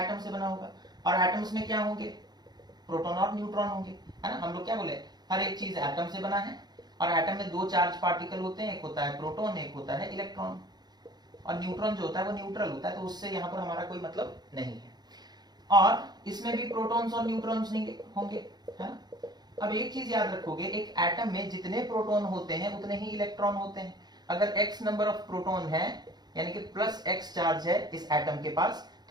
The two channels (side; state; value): left; late; 0.20 ms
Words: से बना होगा। और एटम्स में क्या होंगे? प्रोटॉन और न्यूट्रॉन होंगे, है ना। हम लोग क्या बोले, हर एक चीज एटम से बना है। और एटम में दो चार्ज पार्टिकल होते हैं, एक होता है प्रोटॉन, एक होता है इलेक्ट्रॉन। और न्यूट्रॉन जो होता है वो न्यूट्रल होता है, तो उससे यहाँ पर हमारा कोई मतलब नहीं है। और इसमें भी प्रोटॉन्स और न्यूट्रॉन्स नहीं होंगे, है ना। अब एक चीज याद रखोगे, एक एटम में जितने प्रोटॉन होते हैं उतने ही इलेक्ट्रॉन होते हैं। अगर x नंबर ऑफ प्रोटॉन है, यानी कि प्लस x चार्ज है इस एटम के पास,